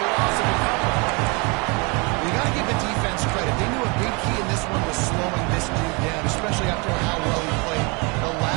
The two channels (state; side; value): quieter; left; 30.0 dB